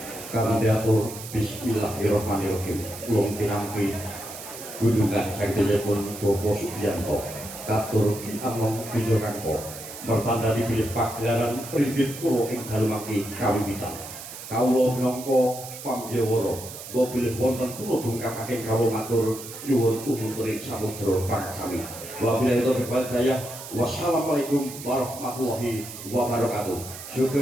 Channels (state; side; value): noise; right; hiss, 12 dB below the sound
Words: Kanthi atur bismillahirrahmanirrahim ulung pinampi gunungan saktipun Bopo Sugiyanto katur Ki Anom Wijokanto mertanda dipilih pagelaran Pringgit Purwo ing dalu mangke kawiwitan. Kawula minangka pambyawara kula bilih wonten kula dungkapaken kawula matur nyuwun umuturing samudra pangsami. Wabillahi taufiq wal hidayah. Wassalamualaikum warahmatullahi wabarakatuh.